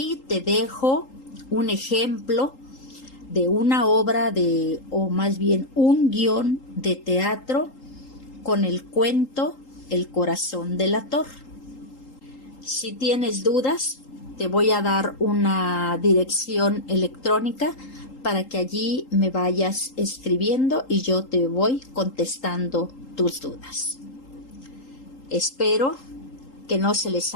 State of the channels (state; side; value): late; right; 3.8 ms